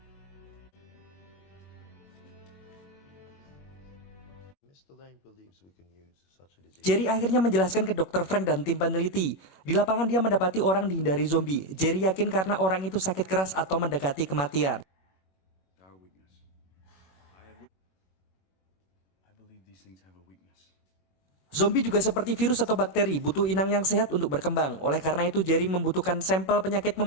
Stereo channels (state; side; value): late; right; 21 ms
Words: Jerry akhirnya menjelaskan ke Dr. Frank dan tim peneliti. Di lapangan dia mendapati orang dihindari zombie. Jerry yakin karena orang itu sakit keras atau mendekati kematian. Zombie juga seperti virus atau bakteri, butuh inang yang sehat untuk berkembang. Oleh karena itu Jerry membutuhkan sampel penyakit